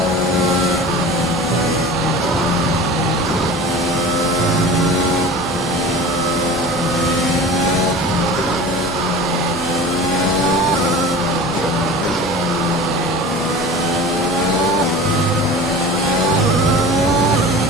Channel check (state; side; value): normal; both; correlation 0.37